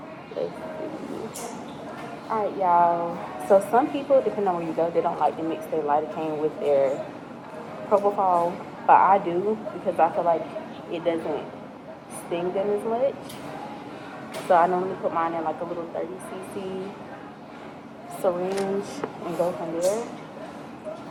Let's see. Alright, y'all. So some people, depending on where you go, they don't like to mix their lidocaine with their propofol, but I do, because I feel like it doesn't sting them as much. So I normally put mine in a little 30cc syringe and go from there.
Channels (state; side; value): identical; both; correlation 1.00